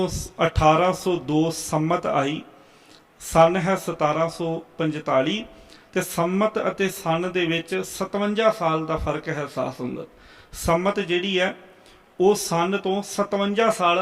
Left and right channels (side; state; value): both; identical; correlation 1.00